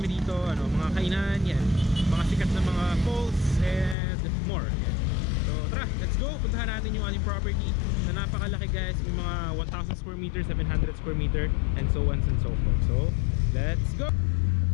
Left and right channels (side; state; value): right; drops out; at 4.0 s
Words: dito, mga kainan, yan. Mga sikat na mga falls and more. Yan. So tara, let's go. Puntahan natin yung ating property na napakalaki guys. May mga 1,000 square meter, 700 square meter, and so on and so forth. So let's go.